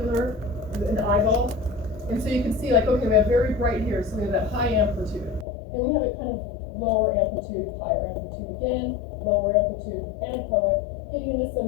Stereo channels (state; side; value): drops out; right; at 5.5 s